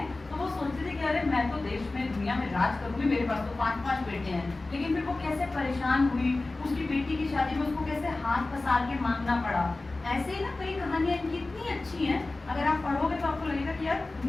तो वो सोचती थी कि अरे मैं तो देश में दुनिया में राज करूंगी, मेरे पास तो 5-5 बेटे हैं। लेकिन फिर वो कैसे परेशान हुई, उसकी बेटी की शादी में उसको कैसे हाथ पसार के मांगना पड़ा। ऐसे ही ना कई कहानियां इनकी इतनी अच्छी हैं, अगर आप पढ़ोगे तो आपको लगेगा कि यार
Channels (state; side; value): quieter; right; 3.2 dB